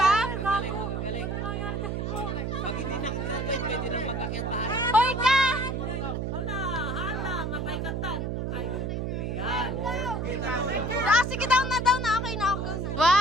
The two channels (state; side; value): noise; right; hum, 2 dB below the sound